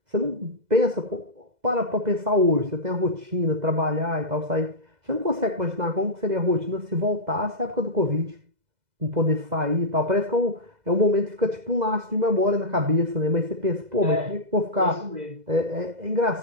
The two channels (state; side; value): late; left; 2.0 ms